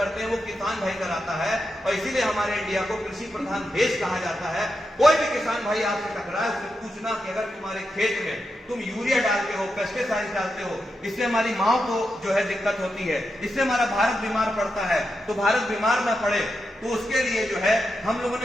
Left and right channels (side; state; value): both; normal; correlation 0.87